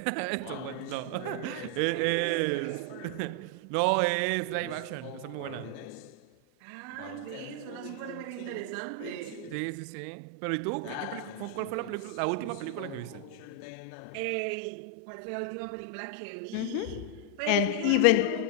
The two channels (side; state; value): both; different; correlation 0.00